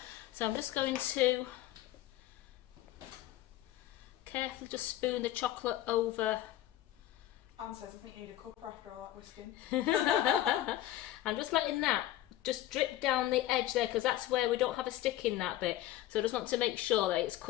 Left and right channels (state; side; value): quieter; right; 14.1 dB